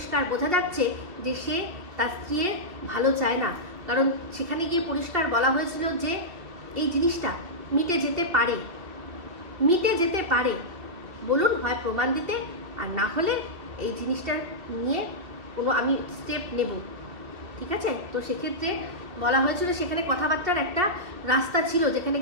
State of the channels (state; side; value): late; left; 2.7 ms